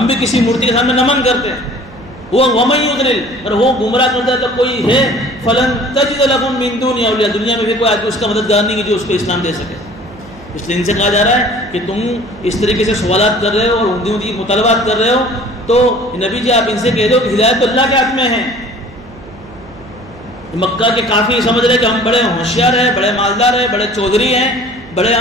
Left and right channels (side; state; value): right; noise; hum, 20 dB below the sound